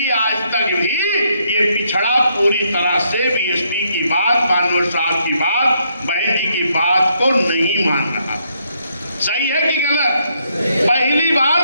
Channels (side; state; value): both; inverted; correlation -0.74